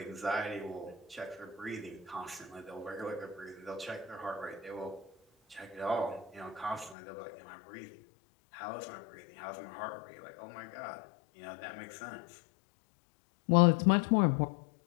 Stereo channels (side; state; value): right; drops out; at 7.0 s